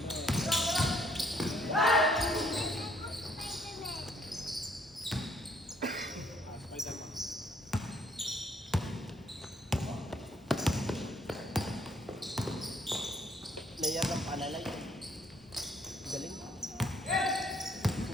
Player ng Panalay. Galing.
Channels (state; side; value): normal; both; correlation 0.66